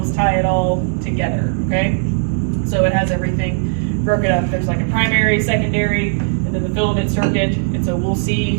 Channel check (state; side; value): silent; left; digital silence